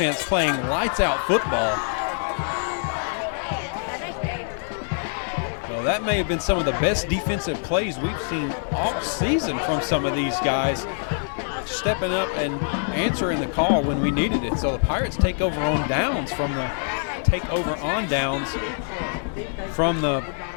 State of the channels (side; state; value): right; silent; digital silence